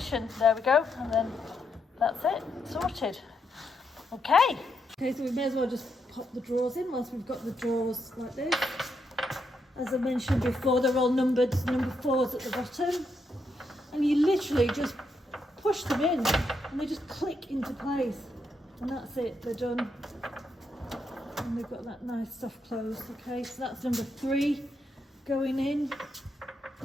There we go, and then that's it, sorted. Okay. Okay, so we may as well just pop the drawers in whilst we've got the drawers like this. As I mentioned before, they're all numbered, number 4's at the bottom. And you literally just push them in and they just click into place. And that's it, they're done. And they've got that nice soft close, okay? So that's number 3 going in.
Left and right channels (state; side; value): normal; both; correlation 0.80